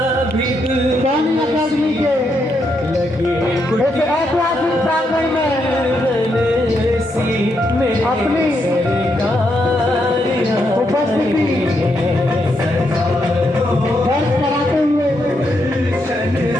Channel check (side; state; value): both; normal; correlation 0.79